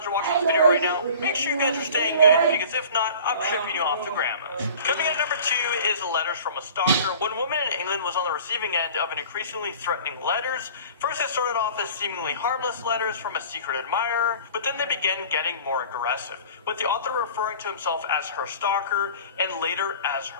or watching this video right now, make sure you guys are staying good, because if not, I'm shipping you off to grandma's. Coming in at number 2 is letters from a stalker. One woman in England was on the receiving end of an increasingly threatening letters. First, it started off as seemingly harmless letters from a secret admirer, but then they began getting more aggressive, with the author referring to himself as her stalker and later as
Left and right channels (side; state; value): both; inverted; correlation -0.44